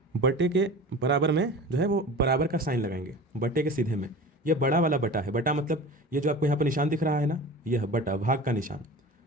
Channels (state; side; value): normal; both; correlation 0.36